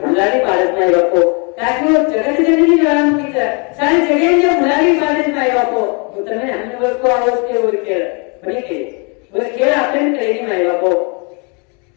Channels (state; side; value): quieter; right; 34.1 dB